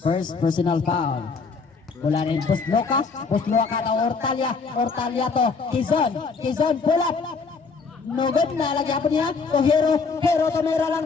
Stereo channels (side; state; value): right; quieter; 4.7 dB